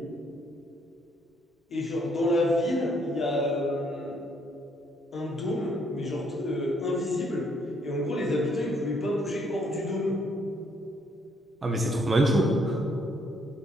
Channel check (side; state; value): both; normal; correlation 0.69